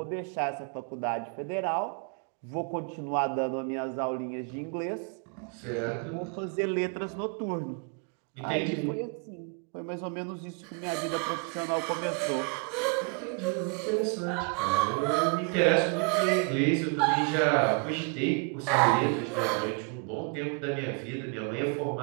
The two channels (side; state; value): left; quieter; 35.8 dB